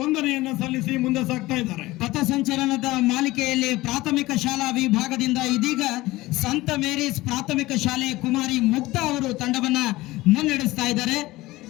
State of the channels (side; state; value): right; quieter; 18.9 dB